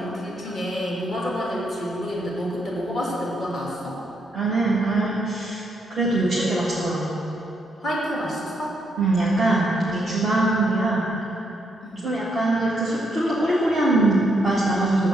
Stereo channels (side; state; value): both; normal; correlation 0.76